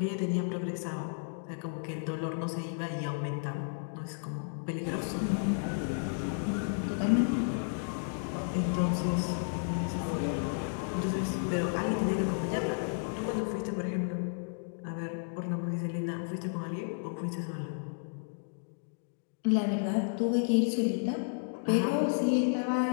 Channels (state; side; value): silent; right; digital silence